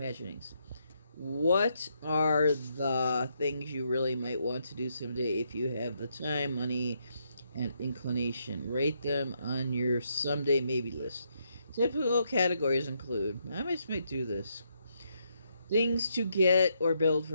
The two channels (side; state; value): both; inverted; correlation -0.77